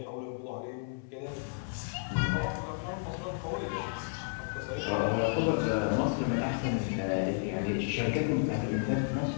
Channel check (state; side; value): silent; right; 56 dB below the other